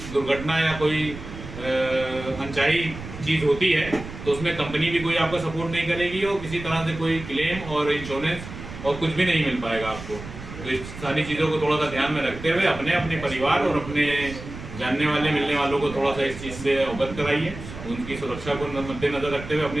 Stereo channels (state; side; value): noise; right; rumble, 12 dB below the sound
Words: दुर्घटना या कोई अनचाही चीज़ होती है तो उसमें कंपनी भी कोई आपका सपोर्ट नहीं करेगी और किसी तरह से कोई क्लेम और इंश्योरेंस और कुछ भी नहीं मिल पाएगा आपको। तो इस सारी चीज़ों को थोड़ा सा ध्यान में रखते हुए अपने परिवार और अपने जानने वाले मिलने वालों को थोड़ा सा इस चीज़ से अवगत कराइए। उनकी सुरक्षा को मद्देनज़र रखते हुए,